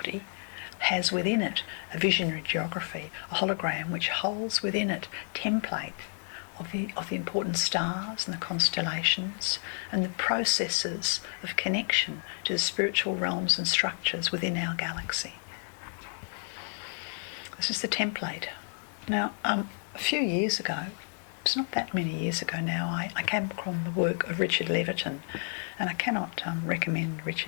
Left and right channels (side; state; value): right; silent; 57 dB below the other